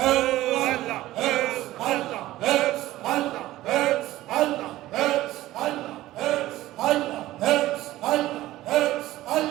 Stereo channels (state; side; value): quieter; left; 15.9 dB